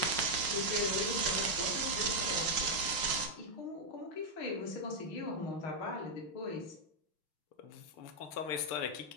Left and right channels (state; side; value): late; right; 5.6 ms